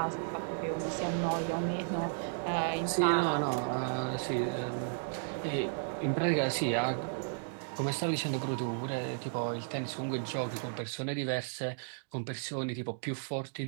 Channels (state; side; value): silent; left; digital silence